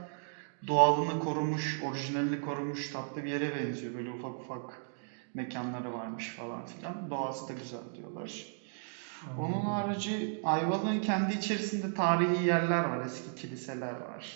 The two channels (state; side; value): silent; left; digital silence